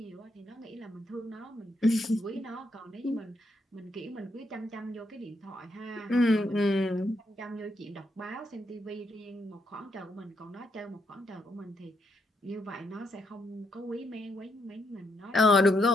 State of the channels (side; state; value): both; normal; correlation 0.78